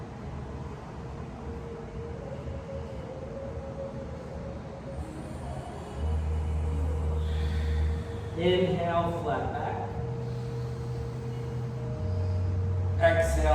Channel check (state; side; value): identical; both; correlation 1.00